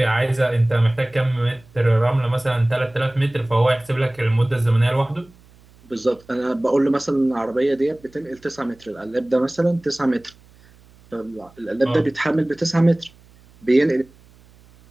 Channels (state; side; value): noise; right; hum, 28 dB below the sound